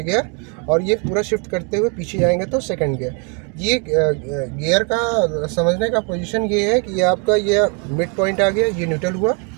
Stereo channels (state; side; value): quieter; left; 36.0 dB